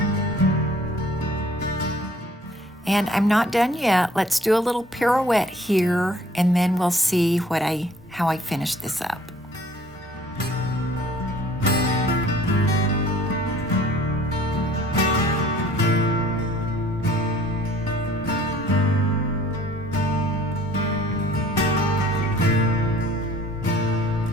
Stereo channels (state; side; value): normal; both; correlation 0.54